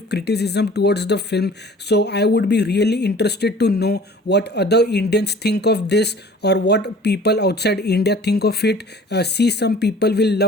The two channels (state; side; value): normal; both; correlation 0.48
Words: criticism towards the film. So I would be really interested to know what other Indians think of this or what people outside India think of it. See, some people will